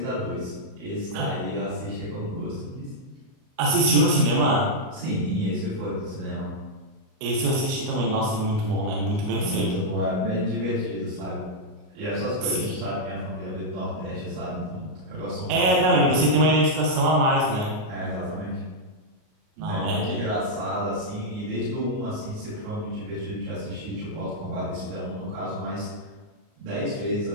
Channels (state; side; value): late; left; 38 ms